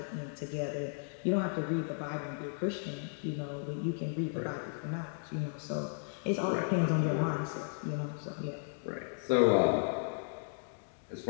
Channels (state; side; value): silent; right; digital silence